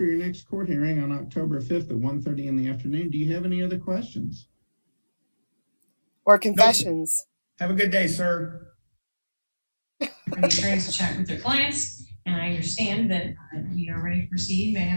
your next court hearing on October 5th at 1:30 in the afternoon. Do you have any other questions? Or confessions. Have a good day, sir. For the attorneys to chat with their clients, and I understand that we are ready to proceed. May I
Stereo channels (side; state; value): both; inverted; correlation -1.00